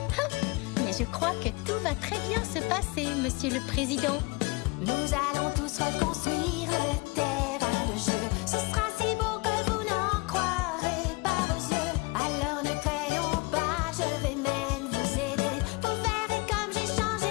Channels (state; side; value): quieter; right; 26.4 dB